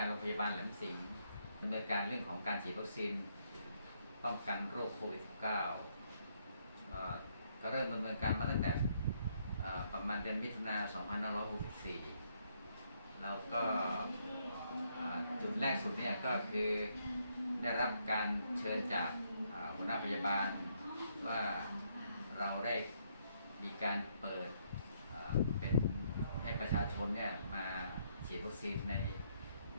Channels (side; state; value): both; inverted; correlation -0.73